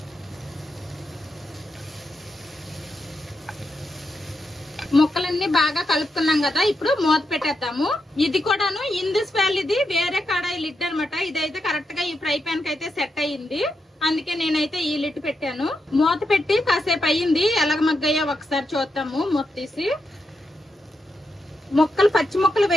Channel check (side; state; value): both; normal; correlation 0.85